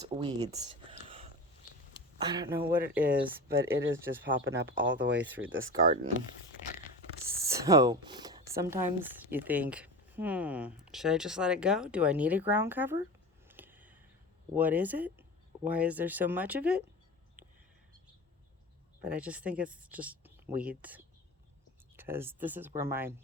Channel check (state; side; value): normal; both; correlation 0.30